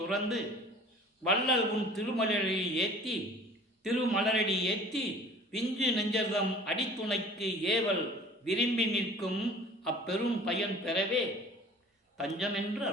துறந்து வள்ளல் உன் திருமலரடி ஏத்தி பிஞ்சு நெஞ்சர்தம் அடித்துணைக்கு ஏவல் விரும்பி நிற்கும் அப்பெரும் பயன் பெறவே தஞ்சம் என்று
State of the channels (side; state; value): both; normal; correlation 0.46